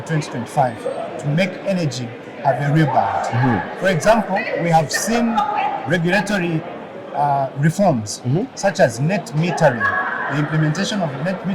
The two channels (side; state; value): both; identical; correlation 1.00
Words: 2025 to make energy have a rebound. For example, we have seen regulatory reforms such as net metering. The implementation of net